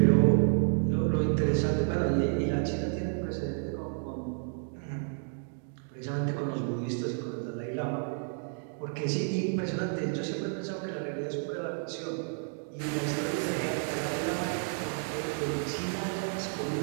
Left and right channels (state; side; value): silent; left; 56 dB below the other